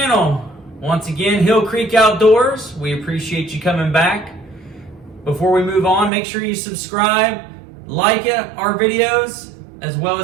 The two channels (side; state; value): left; drops out; at 6.1 s